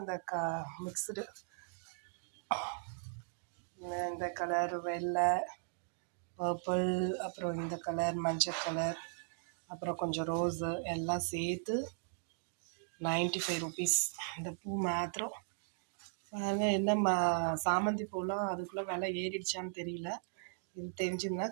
அந்த மிக்சடு. இந்த கலர் வெள்ளை, பர்பிள், அப்புறம் இந்த கலர் மஞ்சள் கலர், அப்புறம் கொஞ்சம் ரோஸு எல்லாம் சேர்த்து 95 ருபீஸ். இந்த பூ மாத்திரம் பாருங்க. என்ன சாமந்தி பூலாம் அதுக்குள்ளே விலை ஏறிடுச்சான்னு தெரியல. இது தெரிஞ்சுங்கன்னா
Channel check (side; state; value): left; silent; digital silence